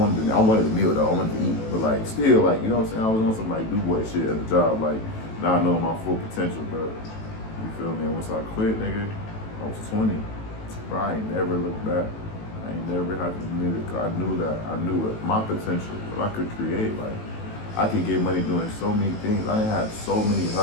wanted the meal though. I wanted to eat, but like still, like you know what I'm saying? I was on some like do boy shit at the job, like not knowing my full potential, bro. You feel me? And once I quit, nigga, I was 20. Bro, I ain't never looked back. I ain't never had to admit it, cause I knew it, my potential, what I could create. Like I could get money doing so many things. I didn't have so many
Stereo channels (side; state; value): right; late; 18 ms